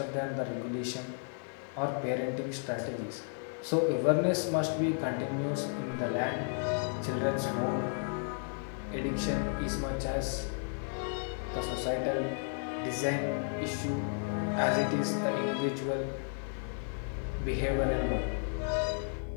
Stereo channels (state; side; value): silent; right; 56 dB below the other